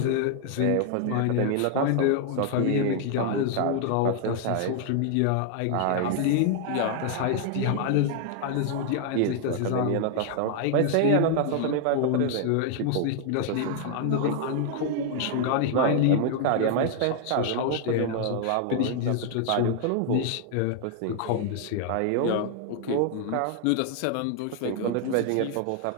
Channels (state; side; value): different; both; correlation 0.00